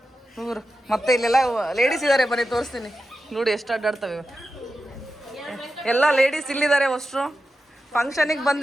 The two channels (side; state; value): both; normal; correlation 0.91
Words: ಇವರು ಮತ್ತೆ ಇಲ್ಲೆಲ್ಲ ಲೇಡೀಸ್ ಇದ್ದಾರೆ. ಬನ್ನಿ ತೋರಿಸ್ತೀನಿ ನೋಡಿ ಎಷ್ಟು ಅಡ್ಡಾಡ್ತವೆ. ಎಲ್ಲ ಲೇಡೀಸ್ ಇಲ್ಲಿದ್ದಾರೆ. ಅಷ್ಟರು ಫಂಕ್ಷನಿಗೆ